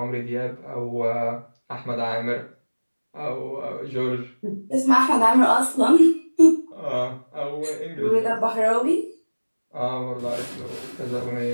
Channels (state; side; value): inverted; both; correlation -1.00